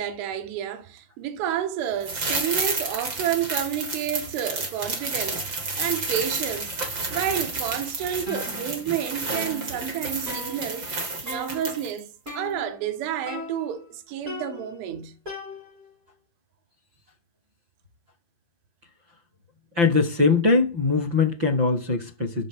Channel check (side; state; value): left; late; 5.8 ms